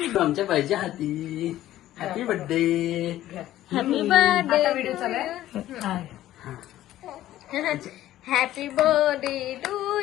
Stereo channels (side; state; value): right; quieter; 13.9 dB